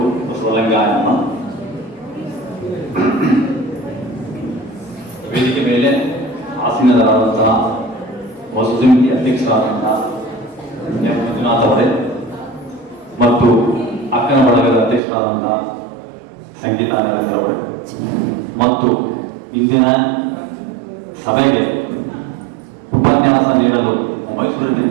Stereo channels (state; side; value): drops out; left; at 15.0 s